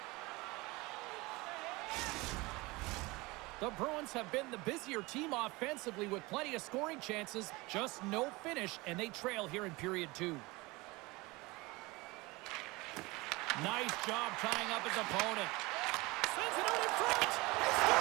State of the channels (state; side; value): quieter; left; 23.1 dB